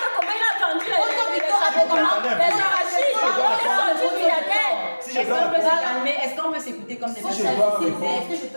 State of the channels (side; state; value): both; inverted; correlation -1.00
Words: Est-ce qu'on peut s'écouter comme des Est-ce personnes? que je